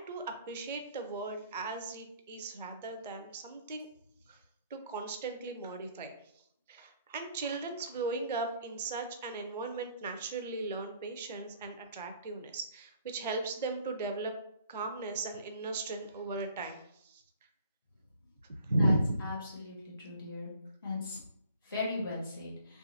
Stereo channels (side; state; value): both; inverted; correlation -0.57